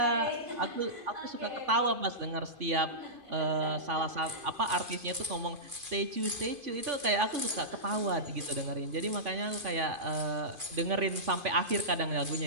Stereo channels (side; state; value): left; late; 2.5 ms